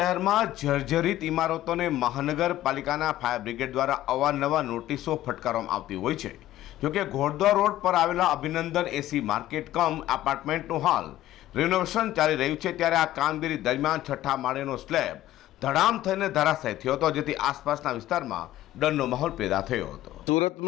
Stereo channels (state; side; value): quieter; right; 14.3 dB